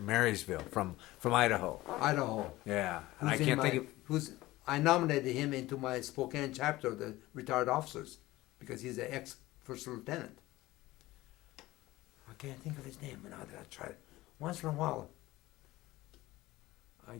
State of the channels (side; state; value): right; quieter; 18.1 dB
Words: from Idaho. Idaho. Yeah, and I can't think of. I nominated him into my Spokane chapter of the retired officers because he's an ex-first lieutenant. I can't think of his name now that I tried it. Once in a while, I